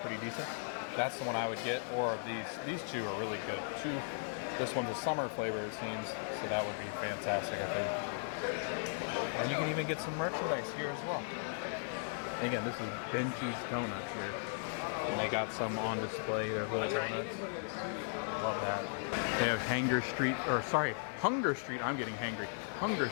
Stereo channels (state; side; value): silent; right; 53 dB below the other